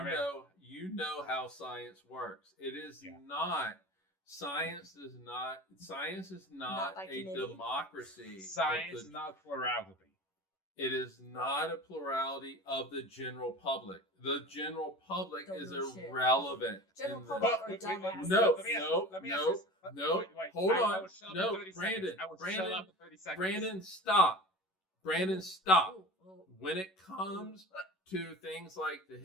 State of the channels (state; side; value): late; right; 11 ms